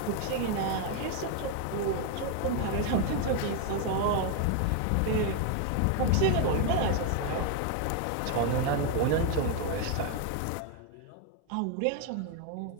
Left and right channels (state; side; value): different; both; correlation 0.01